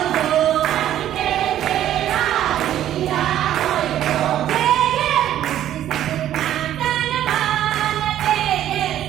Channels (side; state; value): left; quieter; 11.8 dB